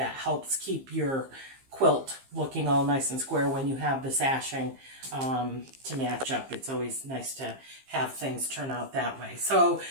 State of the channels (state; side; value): late; left; 15 ms